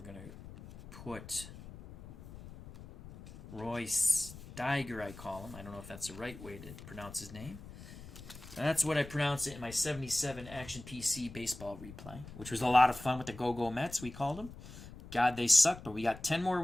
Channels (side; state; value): left; noise; rumble, 15 dB below the sound